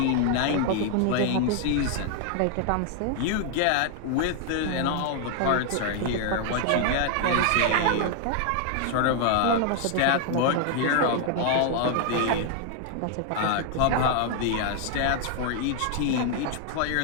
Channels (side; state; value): both; different; correlation 0.00